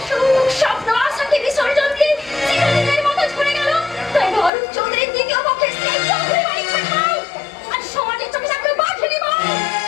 সুখ স্বপ্ন আশাকে বিসর্জন দিয়ে চিরদিনের মতো ঝরে গেল। তাই অরূপ চৌধুরীর দ্বিতীয় পক্ষের স্ত্রী চৌধুরী বাড়ি ছাড়াও আর সমাজের চোখে থাকলে বাঘে নিব।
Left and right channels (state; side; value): drops out; right; at 4.5 s